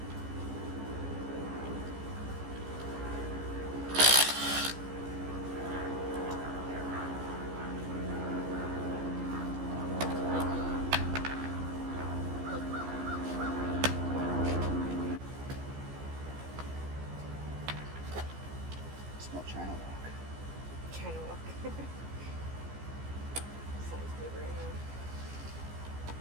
Smell China walk. China walk. Sounds good right now.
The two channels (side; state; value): left; late; 14 ms